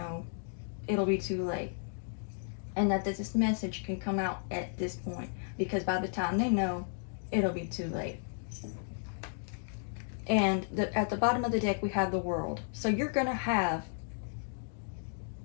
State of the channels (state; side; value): silent; right; digital silence